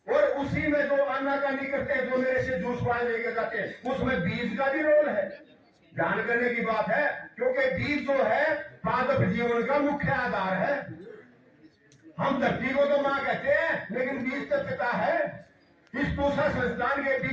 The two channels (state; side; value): identical; both; correlation 1.00